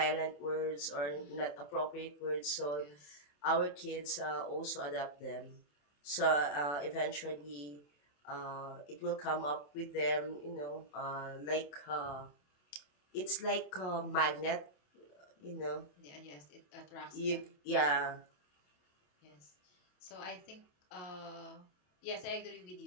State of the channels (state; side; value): late; right; 27 ms